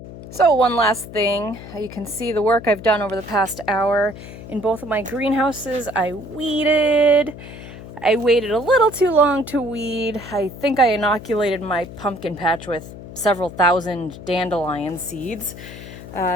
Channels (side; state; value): left; noise; hum, 14 dB below the sound